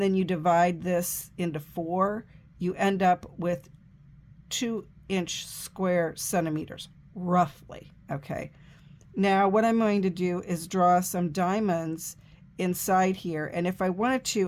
then you divide this into 4, you end up with 2-inch square centimeters, roughly. Okay. Now what I'm going to do is draw some diamonds inside here, and if I wanted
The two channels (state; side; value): identical; both; correlation 1.00